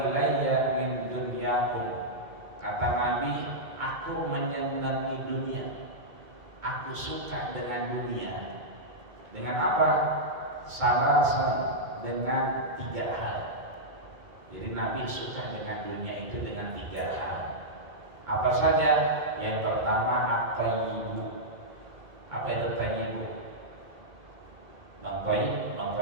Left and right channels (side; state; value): left; late; 2.2 ms